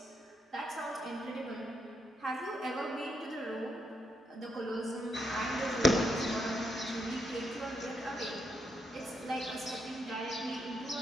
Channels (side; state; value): both; normal; correlation 0.79